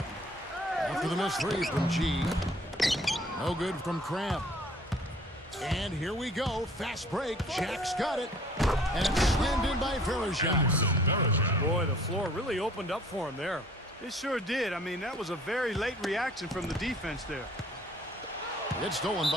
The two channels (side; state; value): both; normal; correlation 0.54